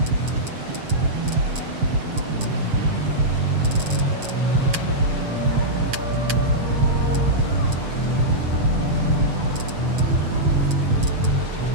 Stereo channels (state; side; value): late; left; 7.3 ms